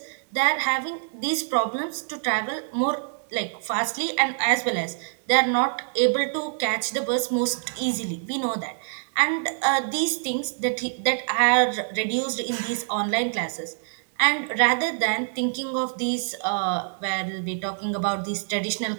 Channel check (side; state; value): left; silent; 61 dB below the other